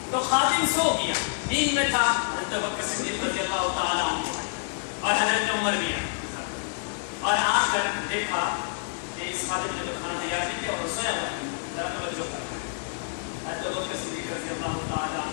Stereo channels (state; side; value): silent; right; digital silence